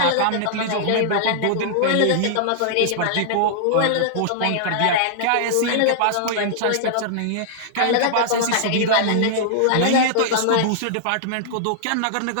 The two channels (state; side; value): different; both; correlation -0.01